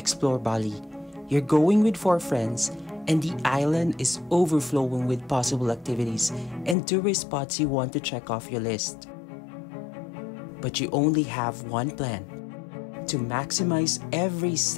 Bali. You're going with 4 friends, and the island is overflowing with possible activities and tourist spots you want to check off your list. But you only have one plan: to maximize every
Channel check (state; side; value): drops out; right; at 6.8 s